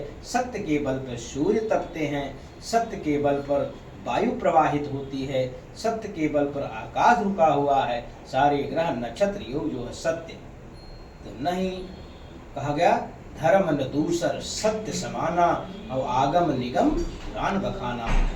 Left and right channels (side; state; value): both; identical; correlation 1.00